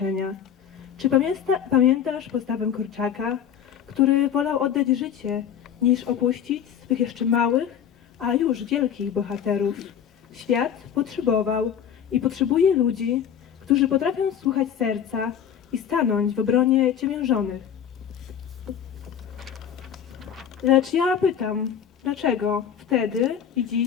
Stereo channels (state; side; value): quieter; right; 8.7 dB